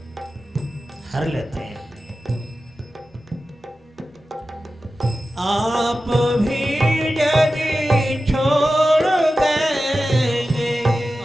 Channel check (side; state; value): both; normal; correlation 0.94